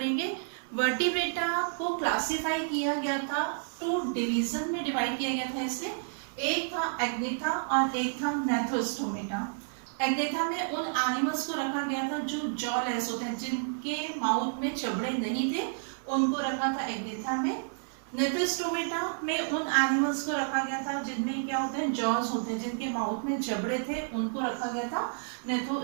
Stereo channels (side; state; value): left; silent; digital silence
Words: वर्टिब्रेटा को क्लासिफाई किया गया था, 2 डिवीजन में डिवाइड किया गया था इसे। एक था एग्नेथा और एक था नेथोस्टोमेटा। एग्नेथा में उन एनिमल्स को रखा गया था जो जॉलेस होते हैं, जिनके माउथ में जबड़े नहीं थे, उनको रखा था एग्नेथा में। नेथोस्टोमेटा में उन एनिमल्स को रखा गया था जिनमें क्या होते हैं, जॉज होते हैं, जिनके माउथ में जबड़े थे, उनको रखा गया था